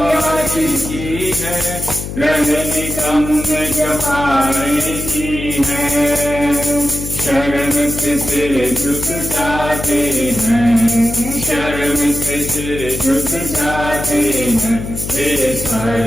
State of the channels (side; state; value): left; noise; hum, 7 dB below the sound